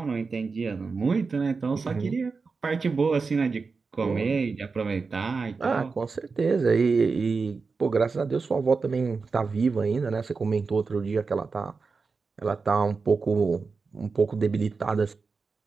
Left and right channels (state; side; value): quieter; left; 4.6 dB